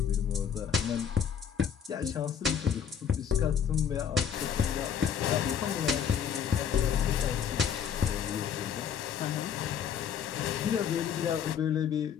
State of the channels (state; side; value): quieter; right; 8.0 dB